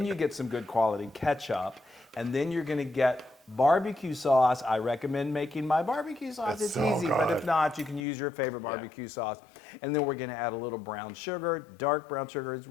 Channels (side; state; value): right; drops out; at 8.1 s